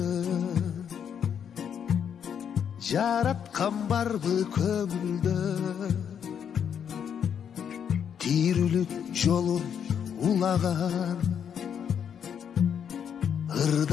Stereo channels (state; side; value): quieter; right; 8.1 dB